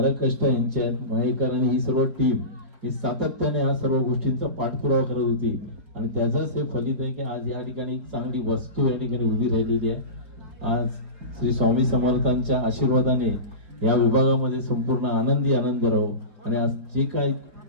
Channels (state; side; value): late; left; 4.5 ms